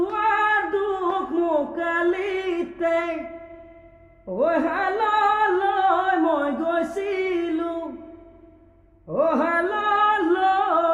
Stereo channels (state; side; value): identical; both; correlation 1.00